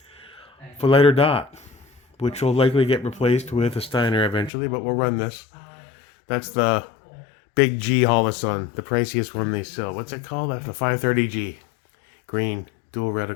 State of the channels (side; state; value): right; drops out; at 4.5 s